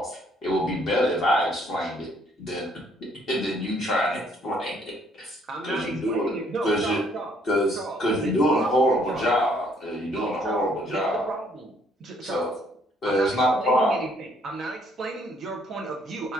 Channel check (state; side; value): normal; both; correlation 0.65